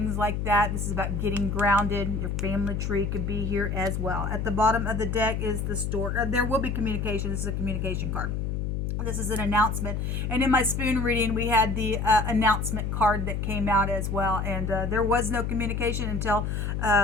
like that. This is about getting grounded. Your family tree could be here as well. At the bottom of the deck is the store. There will be communication. This is a communication card. This is an announcement. And in my spoon reading, we had the announcement card that came out as well. And there was no communication until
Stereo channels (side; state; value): left; noise; hum, 1 dB below the sound